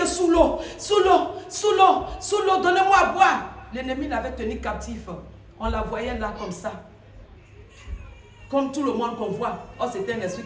sous l'eau, donnez-moi à boire. L'ennemi l'avait tenue captive. On la voyait là comme ça. Comme tout le monde qu'on voit. Oh, c'était un esprit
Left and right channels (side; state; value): both; identical; correlation 1.00